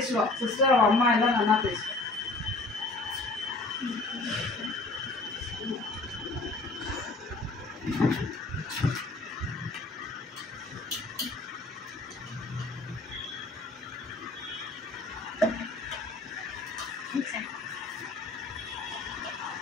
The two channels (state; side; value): quieter; right; 3.2 dB